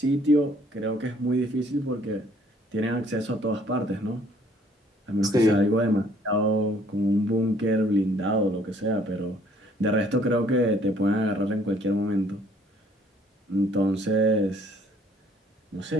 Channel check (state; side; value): normal; both; correlation 0.61